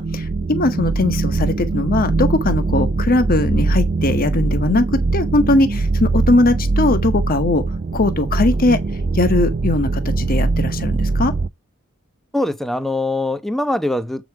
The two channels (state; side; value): normal; both; correlation 0.68